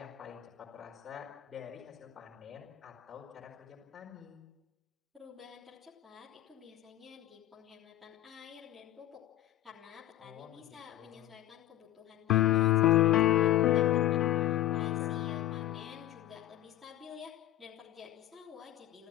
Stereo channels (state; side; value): quieter; right; 14.2 dB